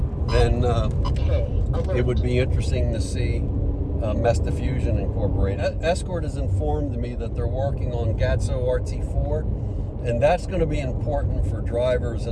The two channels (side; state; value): both; identical; correlation 1.00